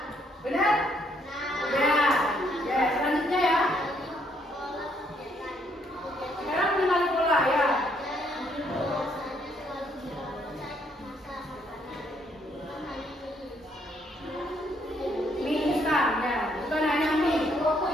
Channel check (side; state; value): both; normal; correlation 0.70